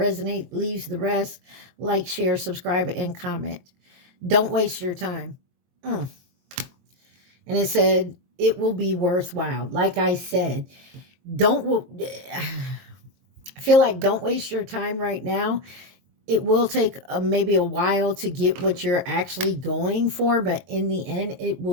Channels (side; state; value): left; late; 23 ms